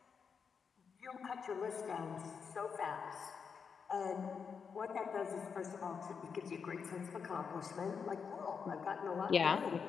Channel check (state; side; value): quieter; right; 6.1 dB